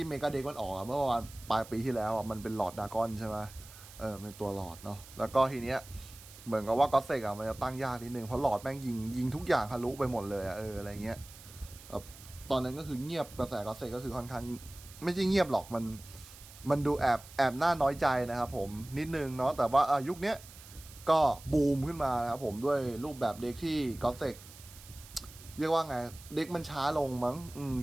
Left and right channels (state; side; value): noise; right; hiss, 18 dB below the sound